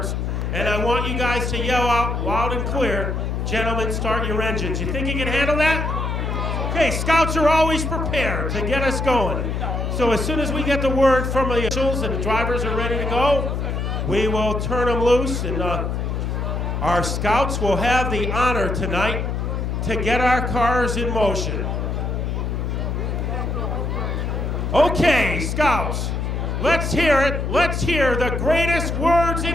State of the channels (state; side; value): noise; left; hum, 1 dB below the sound